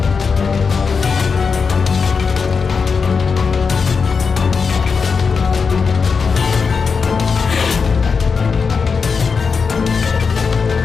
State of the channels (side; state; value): right; quieter; 5.4 dB